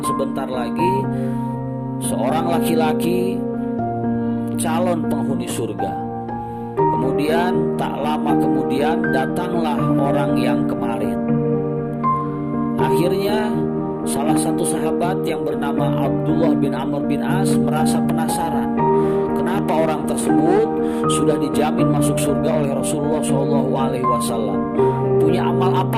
lagi seorang laki-laki calon penghuni surga. Kemudian tak lama kemudian datanglah orang yang kemarin. Akhirnya salah satu sahabat yang bernama Abdullah bin Amr bin As merasa penasaran, kenapa orang tersebut sudah dijamin masuk surga oleh Rasulullah SAW. Punya amal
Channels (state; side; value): identical; both; correlation 1.00